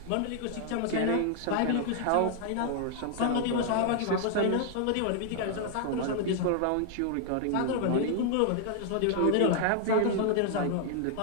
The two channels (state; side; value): different; both; correlation 0.00